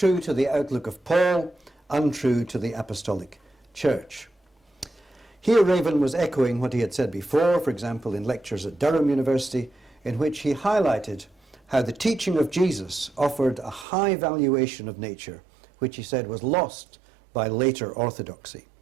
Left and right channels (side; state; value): left; drops out; at 13.9 s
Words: to the outlook of Paul, untrue to the Apostolic Church. Here Raven was echoing what he had said before, for example, in lectures at Durham University, in which he highlighted how the teaching of Jesus offered a high valuation of nature, which he said was lost by later orthodoxy.